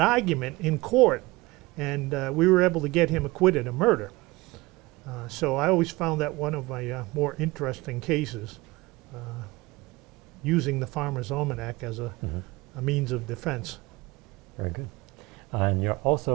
argument in court, and we were able to get him acquitted of murder. So I always found that one of my more interesting cases, using the Farmer's Almanac as a means of defense. Very good. And you're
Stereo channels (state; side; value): quieter; left; 21.8 dB